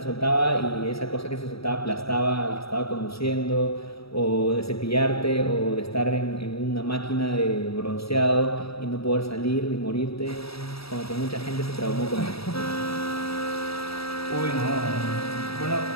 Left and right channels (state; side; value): late; right; 0.77 ms